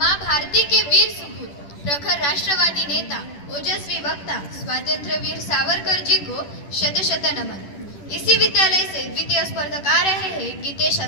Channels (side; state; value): right; late; 10 ms